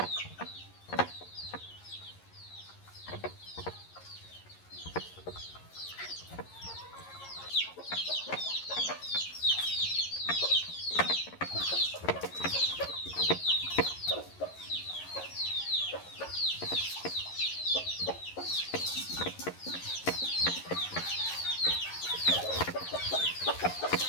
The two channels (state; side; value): late; right; 11 ms